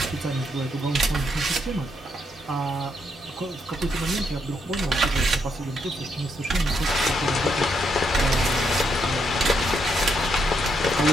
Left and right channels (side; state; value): both; normal; correlation 0.77